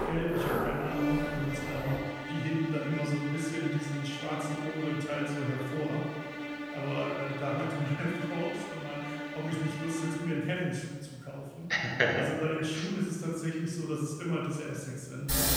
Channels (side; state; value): both; identical; correlation 1.00